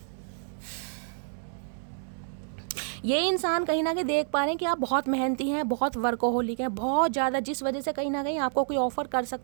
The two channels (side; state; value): left; silent; 59 dB below the other